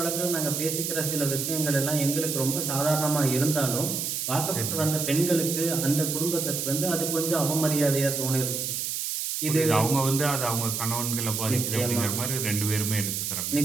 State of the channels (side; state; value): right; noise; hiss, 2 dB below the sound